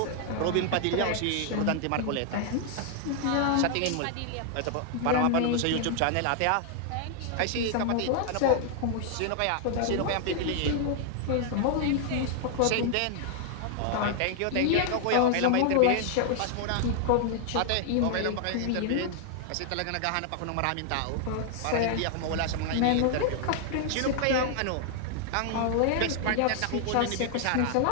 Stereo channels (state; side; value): different; both; correlation 0.00